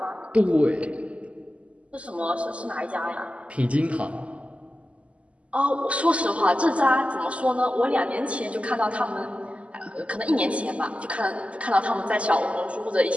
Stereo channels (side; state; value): left; late; 0.062 ms